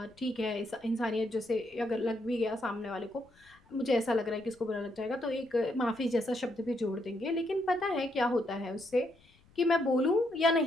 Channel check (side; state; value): left; noise; rumble, 30 dB below the sound